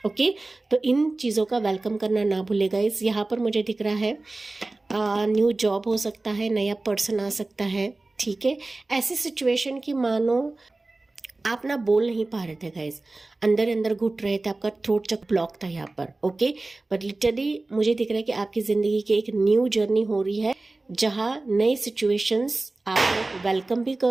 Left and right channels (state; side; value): quieter; left; 3.1 dB